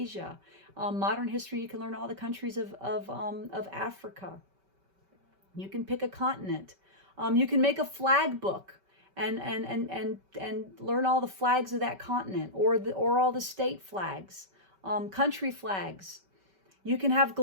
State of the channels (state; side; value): late; left; 5.2 ms